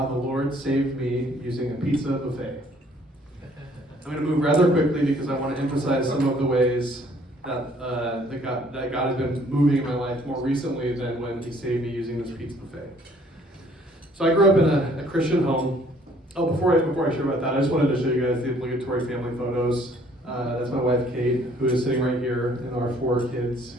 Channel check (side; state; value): both; normal; correlation 0.60